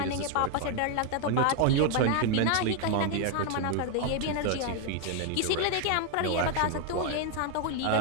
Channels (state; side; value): different; both; correlation 0.00